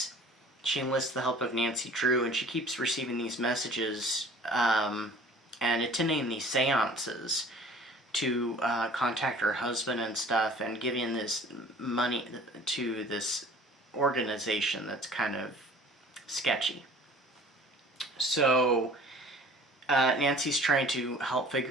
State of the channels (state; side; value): normal; both; correlation 0.48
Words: She enlists the help of Nancy Drew, and she keeps receiving these messages and attending these seances to contact her husband and stuff, and giving this money to this organization that's kind of sketchy. So Nancy's trying to help